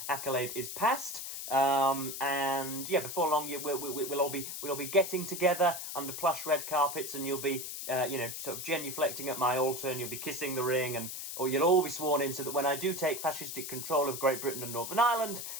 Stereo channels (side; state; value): left; noise; hiss, 7 dB below the sound